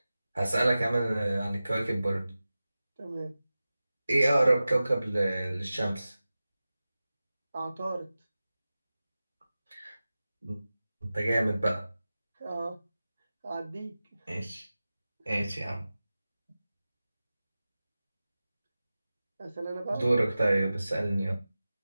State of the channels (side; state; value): both; inverted; correlation -0.96